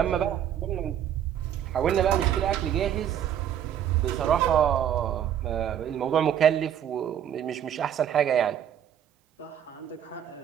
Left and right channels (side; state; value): left; quieter; 9.8 dB